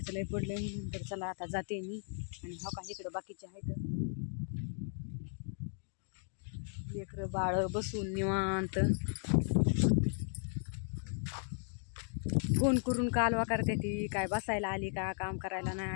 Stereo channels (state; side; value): silent; right; 54 dB below the other